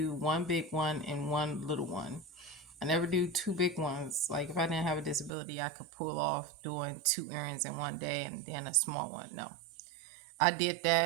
one big one and one little one. I never do two big ones. Like if I didn't have a disability, I could pull off doing two errands in one day and then a small one. No, I did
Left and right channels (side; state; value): left; drops out; at 5.3 s